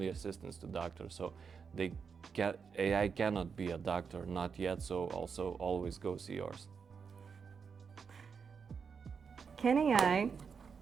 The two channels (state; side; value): quieter; left; 6.0 dB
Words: assistants to doctors. So AI cannot be a doctor, not yet, so also always go see yours. Can AI